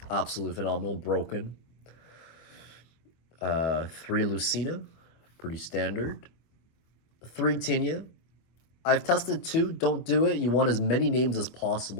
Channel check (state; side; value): late; right; 25 ms